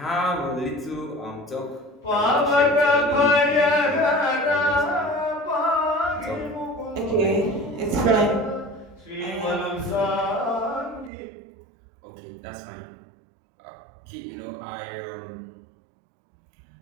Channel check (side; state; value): left; drops out; at 11.1 s